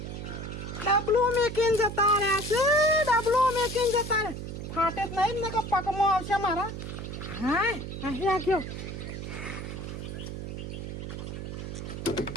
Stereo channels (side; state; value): right; noise; hum, 7 dB below the sound